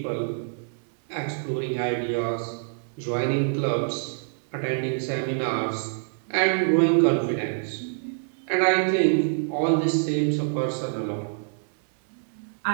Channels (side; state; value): left; silent; 61 dB below the other